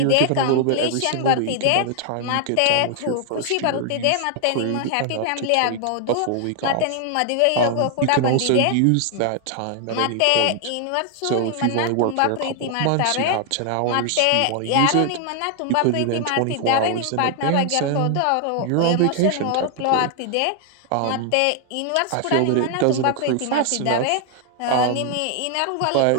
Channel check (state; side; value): different; both; correlation 0.00